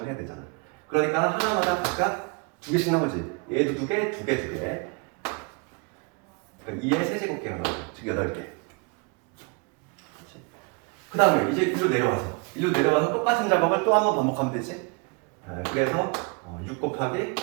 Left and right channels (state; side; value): quieter; left; 32.3 dB